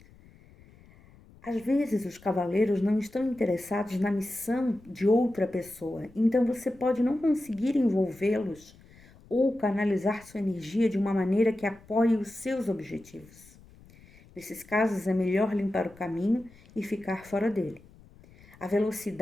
Às vezes, os cavaleiros não estão interessados na missão de outra pessoa, então você pode não conseguir envolvê-los ou canalizar sua energia de uma maneira que apoie os seus objetivos. Nesses casos, é melhor limpar o caminho e ficar fora dele. A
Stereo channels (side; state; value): left; noise; rumble, 25 dB below the sound